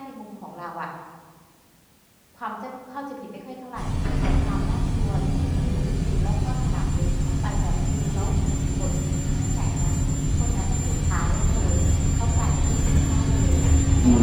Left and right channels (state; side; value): identical; both; correlation 1.00